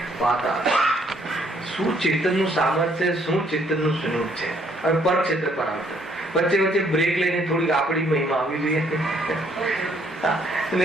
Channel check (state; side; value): normal; both; correlation 0.66